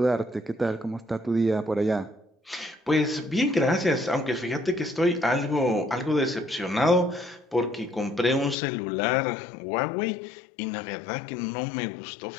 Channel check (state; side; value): drops out; right; at 8.6 s